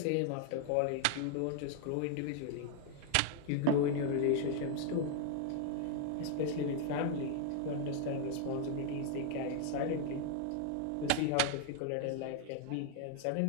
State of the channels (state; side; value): different; both; correlation 0.00